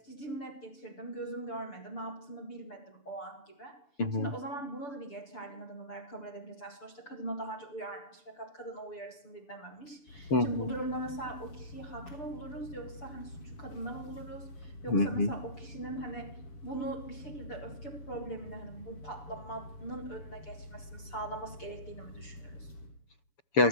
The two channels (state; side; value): late; right; 6.9 ms